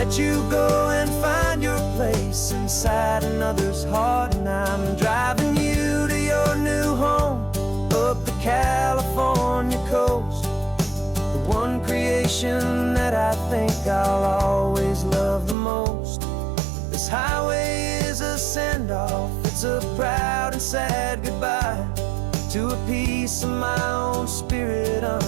you go and find your place inside another's heart. And I'm driving you to your new home up the California coast, the one creation that I think I'll always love the most. This highway is a send-off, it's a proud and sad goodbye to a piece of my own spirit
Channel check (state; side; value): drops out; left; at 15.6 s